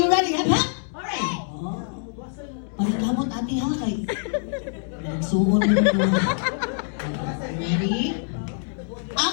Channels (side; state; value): right; silent; digital silence